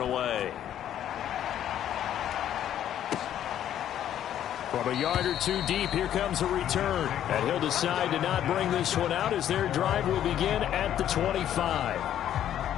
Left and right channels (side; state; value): right; quieter; 10.9 dB